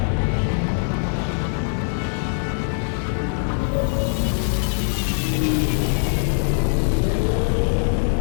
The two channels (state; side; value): silent; right; digital silence